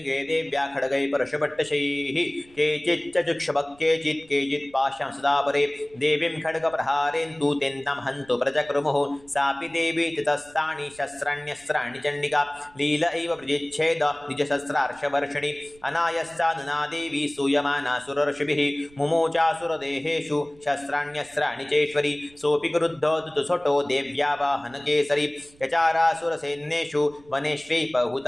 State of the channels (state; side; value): noise; right; rumble, 27 dB below the sound